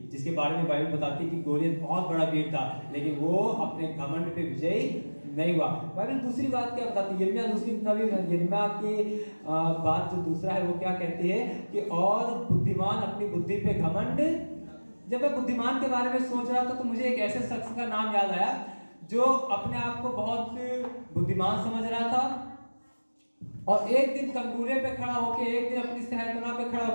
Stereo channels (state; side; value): inverted; both; correlation -1.00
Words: जिसके बारे में बाइबल बताती है कि गोलियत बहुत बड़ा वीर था, लेकिन वो अपने घमंड पे विजयी नहीं हुआ। बाइबल दूसरी बात क्या बताती है? यिर्मयाह दूसरी नबी यिर्मयाह की बात जो दूसरा है वो क्या कहती है कि और बुद्धिमान अपनी बुद्धि पे घमंड। जब मैं बुद्धिमान के बारे में सोच रहा था तो मुझे एक ऐसे शख्स का नाम याद आया जो अपने आप को बहुत बुद्धिमान समझ रहा था और एक दिन कंगूरे पे खड़ा होके, एक दिन अपनी सहरतना पे खड़ा